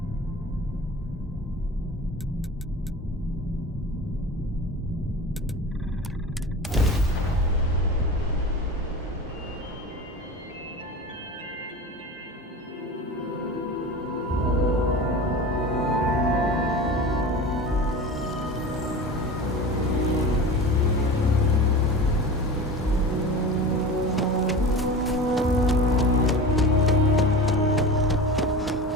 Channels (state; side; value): normal; both; correlation 0.33